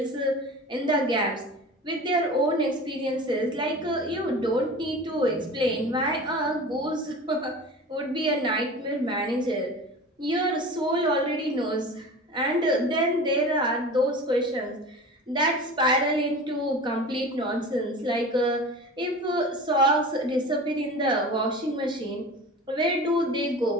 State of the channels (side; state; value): both; normal; correlation 0.35